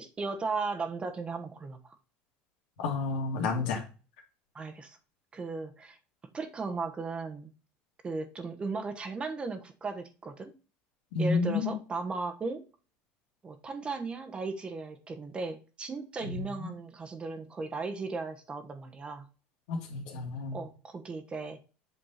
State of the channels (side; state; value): both; normal; correlation 0.59